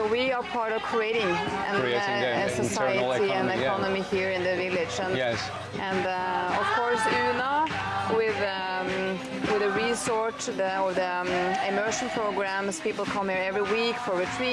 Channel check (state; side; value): identical; both; correlation 1.00